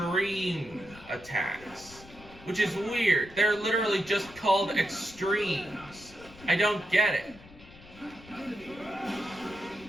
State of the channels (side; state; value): left; noise; rumble, 20 dB below the sound